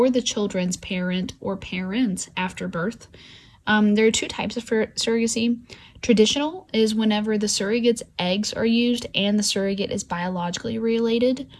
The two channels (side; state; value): both; identical; correlation 1.00